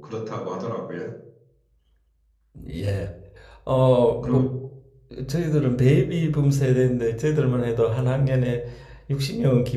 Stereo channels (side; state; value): both; identical; correlation 1.00